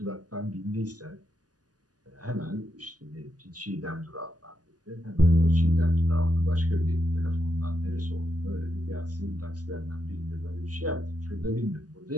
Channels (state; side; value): late; left; 0.68 ms